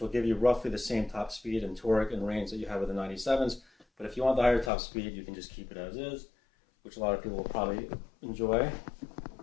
will give you roughly the same top speed and torque and range that you have with the 97s. But if you want the higher top speed, you can just keep it as is, which a lot of people will probably enjoy.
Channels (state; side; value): drops out; right; at 4.7 s